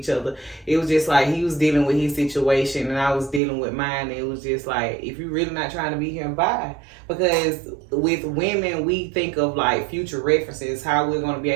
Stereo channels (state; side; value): drops out; left; at 3.4 s